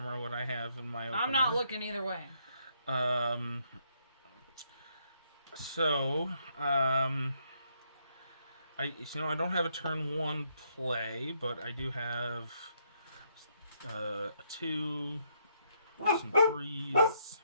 what I have in my opener. I'm not looking either way. I don't have a turn 1 play, but I do have a 2, some 3s.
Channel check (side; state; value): both; inverted; correlation -0.74